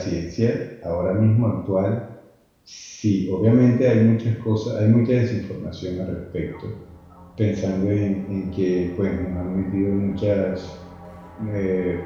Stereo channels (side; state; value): both; identical; correlation 1.00